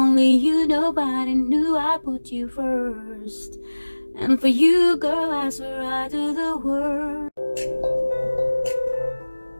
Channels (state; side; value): inverted; both; correlation -1.00